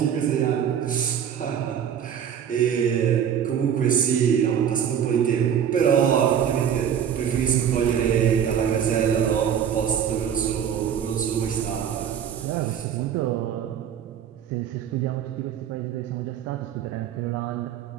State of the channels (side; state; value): left; quieter; 8.7 dB